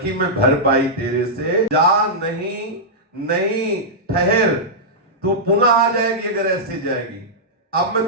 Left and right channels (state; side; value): normal; both; correlation -0.10